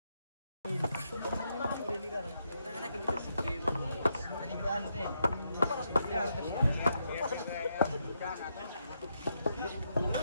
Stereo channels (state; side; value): inverted; both; correlation -0.80